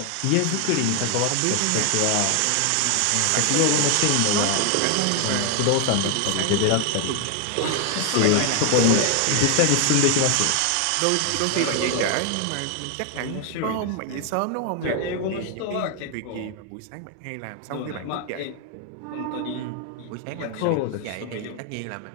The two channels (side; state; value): both; different; correlation 0.00